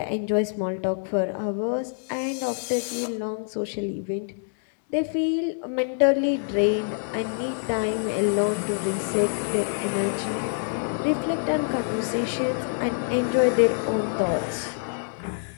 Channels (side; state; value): right; silent; digital silence